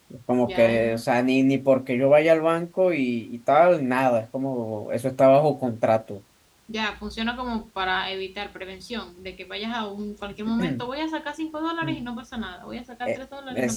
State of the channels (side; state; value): both; identical; correlation 1.00